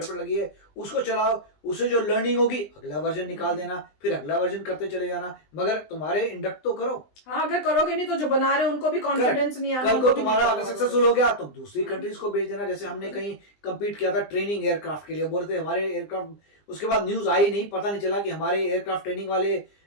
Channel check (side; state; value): right; late; 20 ms